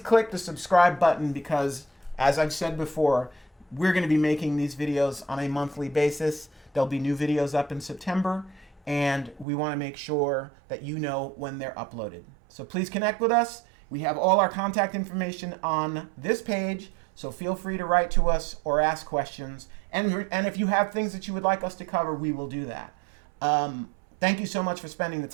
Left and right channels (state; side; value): drops out; left; at 9.5 s